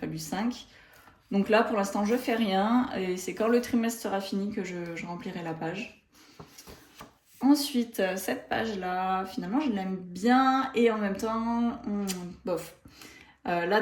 5. Donc là pour l'instant je fais rien et c'est quand le trimestre sera fini que je remplirai la page. Ensuite cette page là finalement je l'aime bien et en même temps bof. Là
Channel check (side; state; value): both; identical; correlation 1.00